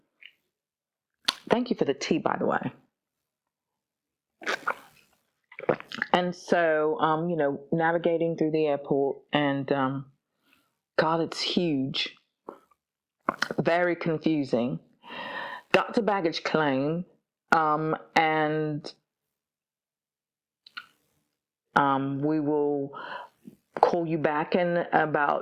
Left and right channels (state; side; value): identical; both; correlation 1.00